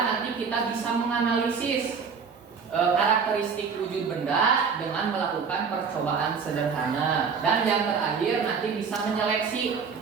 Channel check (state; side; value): quieter; left; 5.8 dB